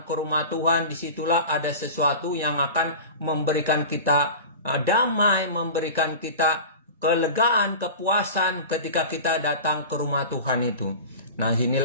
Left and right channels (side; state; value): both; inverted; correlation -0.33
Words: ke rumah Tuhan, disitulah ada sesuatu yang akan memberikan kita damai, memberikan kita kelegaan, kepuasan ketika kita datang ke rumah Tuhan itu. Nah,